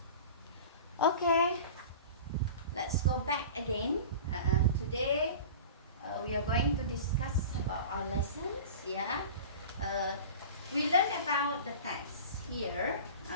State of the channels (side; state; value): both; inverted; correlation -0.36